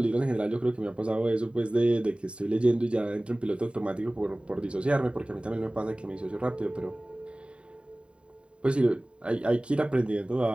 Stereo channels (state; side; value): late; left; 0.056 ms